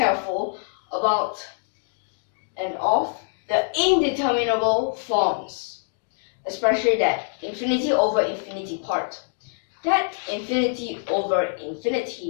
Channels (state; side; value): silent; right; digital silence